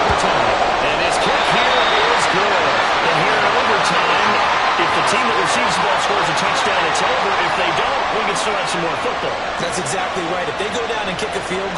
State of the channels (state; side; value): identical; both; correlation 1.00